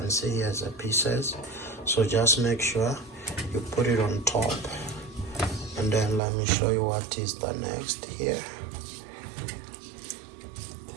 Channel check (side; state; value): left; drops out; at 6.2 s